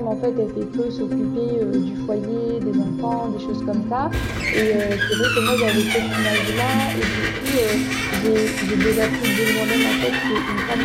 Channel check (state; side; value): identical; both; correlation 1.00